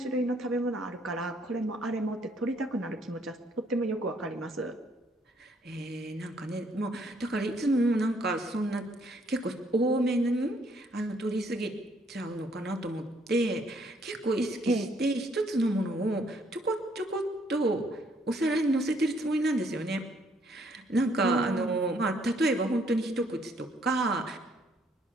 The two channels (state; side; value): normal; both; correlation 0.67